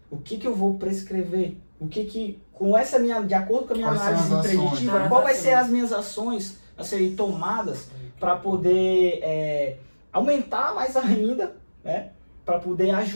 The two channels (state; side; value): inverted; both; correlation -1.00